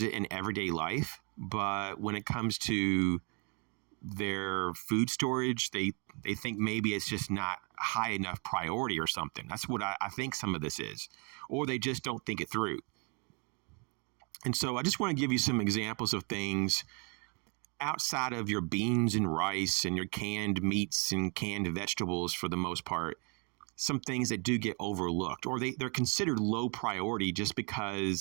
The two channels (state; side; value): quieter; left; 34.9 dB